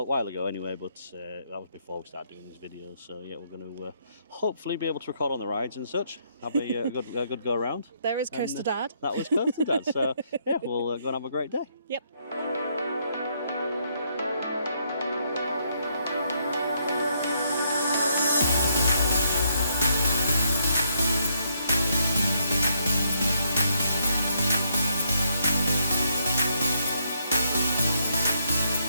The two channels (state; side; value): inverted; both; correlation -0.73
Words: while ago anyway, but that was before we started doing these videos. So yeah, we're going to hopefully be able to record on the rides and such. Have a good go around. There is Coaster Dad. That was Coaster Dad. So yeah, we'll go and have a great day. Yep.